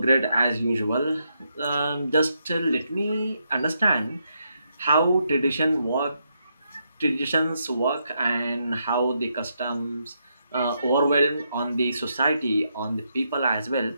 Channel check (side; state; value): both; inverted; correlation -0.80